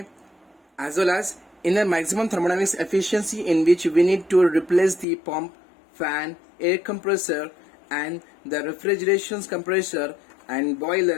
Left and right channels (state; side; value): drops out; right; at 5.1 s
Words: as well as in a maximum thermodynamics efficiency in which we need to replace the pump, fan, air compressor and the refrigeration compressor and